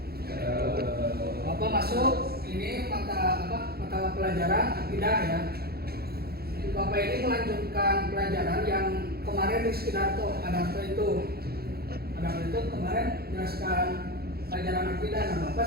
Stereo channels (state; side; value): late; left; 0.45 ms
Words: Bapak masuk ini mata pelajaran akidah ya. Bapak ini melanjutkan pelajaran yang kemarin di Sidarto, Adarto itu kemarin jelaskan pelajaran akidah. Nah Bapak